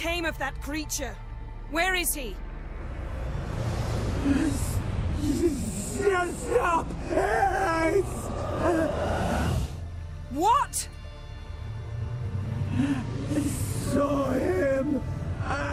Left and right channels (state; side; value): identical; both; correlation 1.00